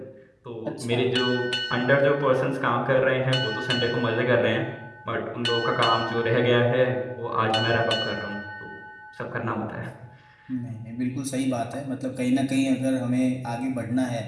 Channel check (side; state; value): both; identical; correlation 1.00